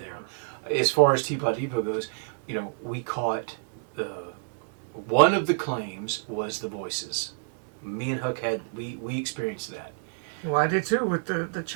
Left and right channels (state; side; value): silent; left; 59 dB below the other